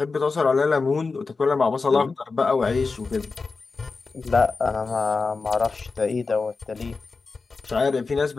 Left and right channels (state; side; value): quieter; right; 4.3 dB